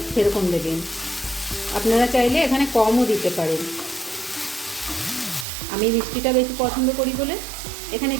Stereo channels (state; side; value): drops out; left; at 5.5 s